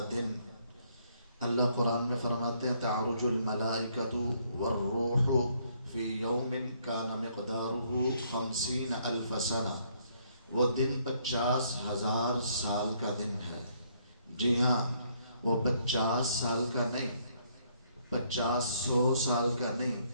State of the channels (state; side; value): inverted; both; correlation -0.69